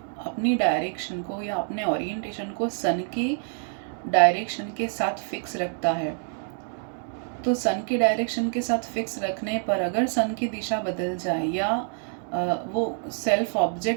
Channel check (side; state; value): left; silent; 56 dB below the other